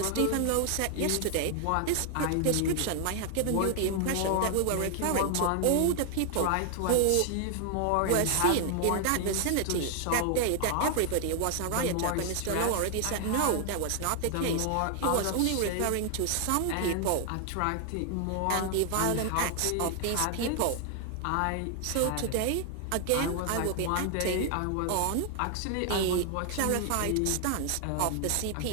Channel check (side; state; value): both; different; correlation 0.00